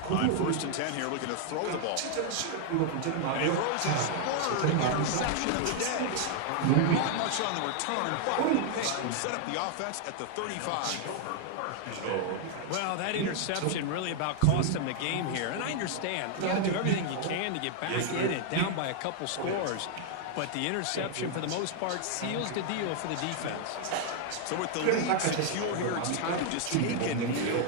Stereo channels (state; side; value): different; both; correlation 0.00